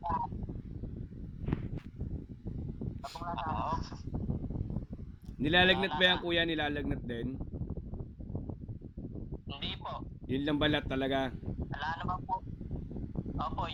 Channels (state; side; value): identical; both; correlation 1.00